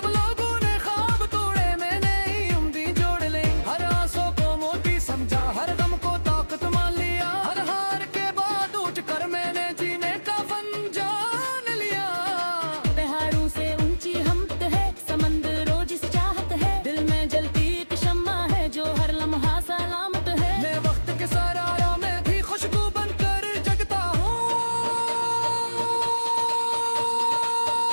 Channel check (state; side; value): inverted; both; correlation -1.00